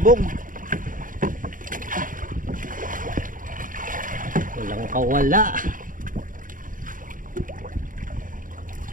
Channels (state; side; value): late; left; 0.39 ms